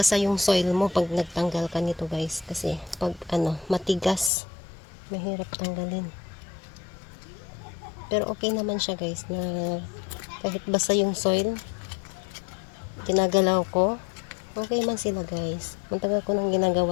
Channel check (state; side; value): drops out; right; at 4.3 s